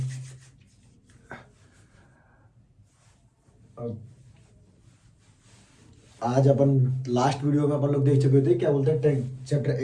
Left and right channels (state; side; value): identical; both; correlation 1.00